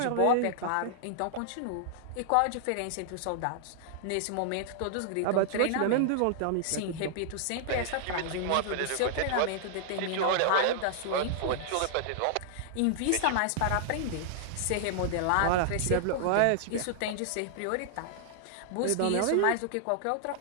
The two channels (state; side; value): different; both; correlation 0.00